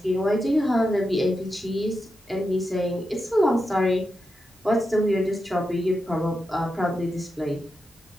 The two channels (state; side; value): normal; both; correlation 0.88